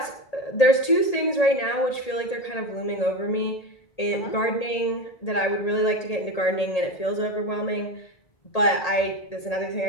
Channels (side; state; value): right; late; 1.8 ms